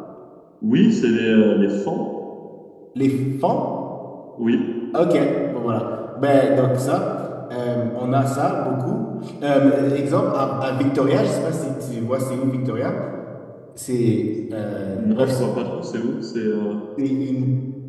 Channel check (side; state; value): both; identical; correlation 1.00